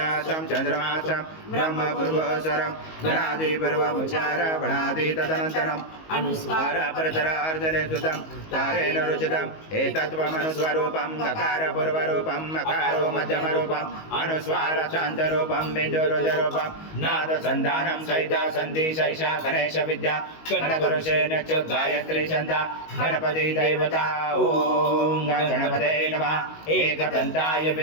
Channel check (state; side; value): late; right; 19 ms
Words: त्वं चन्द्रमा त्वं ब्रह्म पूर्वस्वरं गणादिपूर्वमुच्चार वणादि तदनन्तरम् अनुस्वार परतरार्धले सुतं तारेण रुचितम् एतत्त्वमनुस्वरूपं गकारपूर्व पूर्वरूपं मकारो मध्यमरूपम् अनुस्वार शान्तरूपं बिन्दुरुदरूपं नादसन्धानं सहिता सन्ति सैषा गणेश विद्या गणपुरुषेण च गायत्री छन्दा गणपति देवता ॐ गणपते नमः एकदन्ताय